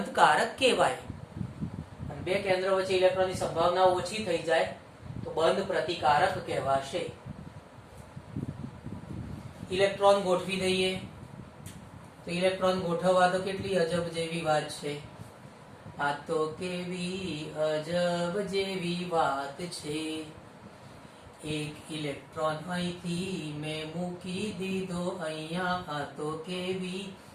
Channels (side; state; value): both; identical; correlation 1.00